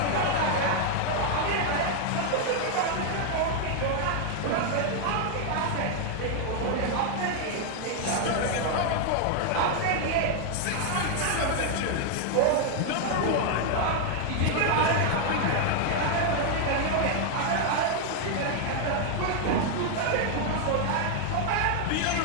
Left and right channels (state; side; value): different; both; correlation 0.00